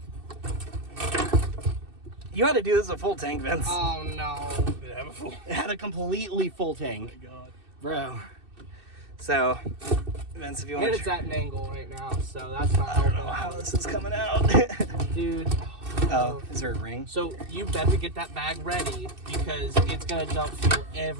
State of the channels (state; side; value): late; left; 2.6 ms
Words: You had to do this a full tank, Vince. Oh no. Did it have a full? It had a completely full tank, God. bro. So, Vince, if you want And to, it's at an angle right now, so that's not I don't know helping. how this is coming out. Dude. Oh, is there a ring? So you better get that bag ready because it's gonna dump fuel